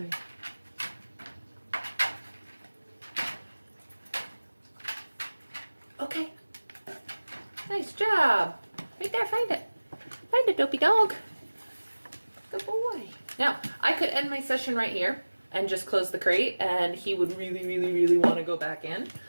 Okay. Nice job. Right there, find it. Find it, dopey dog. Good boy. Now, I could end my session right here and just close the crate, and he would really, really, really want to go back in.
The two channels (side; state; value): both; inverted; correlation -1.00